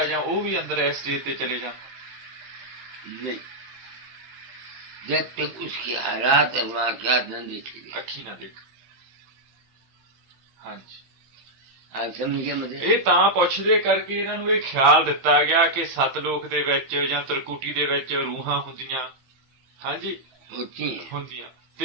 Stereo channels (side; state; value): left; late; 15 ms